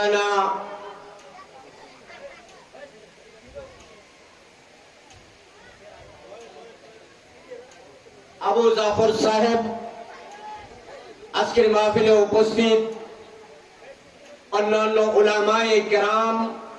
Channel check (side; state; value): both; identical; correlation 1.00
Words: আবু জাফর সাহেব আজকের মাহফিলে উপস্থিত, অন্যান্য উলামায়ে কেরাম,